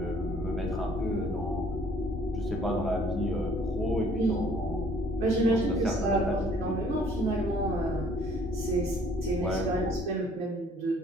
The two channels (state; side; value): normal; both; correlation 0.58